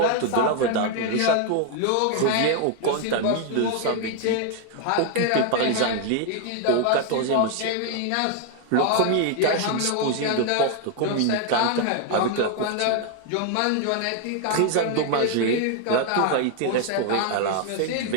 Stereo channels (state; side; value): different; both; correlation 0.00